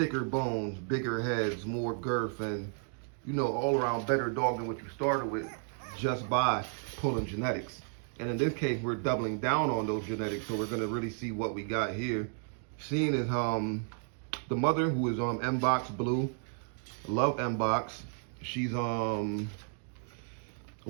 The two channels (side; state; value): left; silent; 56 dB below the other